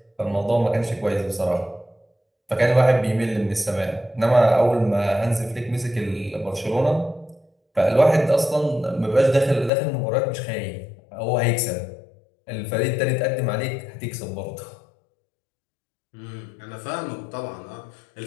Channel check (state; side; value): drops out; right; at 9.7 s